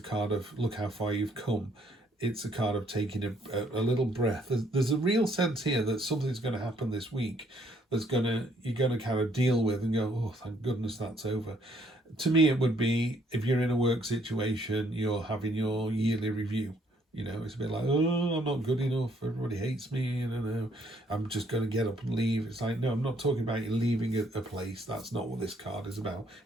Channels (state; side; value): normal; both; correlation 0.67